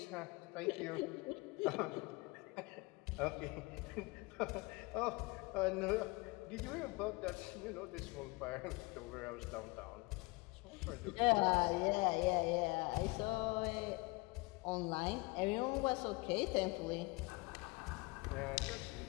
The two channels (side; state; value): right; quieter; 25.4 dB